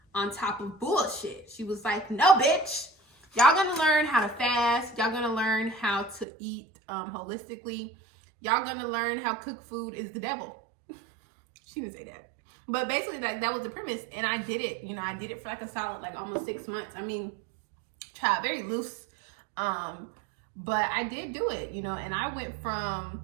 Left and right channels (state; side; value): drops out; left; at 6.2 s